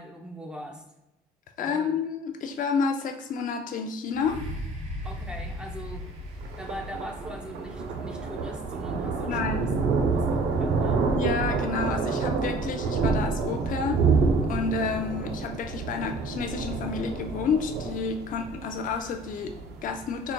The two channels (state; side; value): normal; both; correlation 0.47